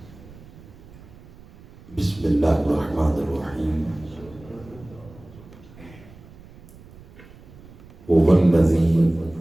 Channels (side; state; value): right; noise; rumble, 21 dB below the sound